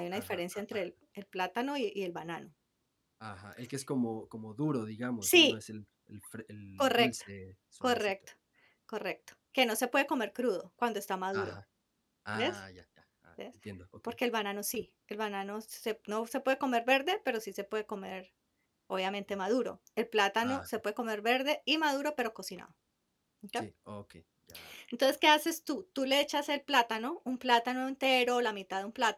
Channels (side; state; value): both; identical; correlation 1.00